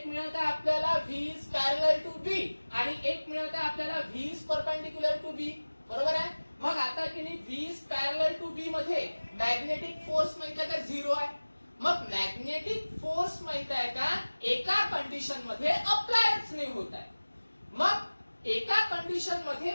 मिळत आहे आपल्याला V is parallel to B आणि एक मिळत आहे आपल्याला V is perpendicular to B, बरोबर आहे. मग आता की नाही V is parallel to B मध्ये मॅग्नेटिक फोर्स माहिती आहे का 0 आहे. मग मॅग्नेटिक फोर्स माहिती आहे का एका कंडिशन मध्ये अप्लायच नाही होत आहे. मग एका कंडिशन मध्ये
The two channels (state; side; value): inverted; both; correlation -1.00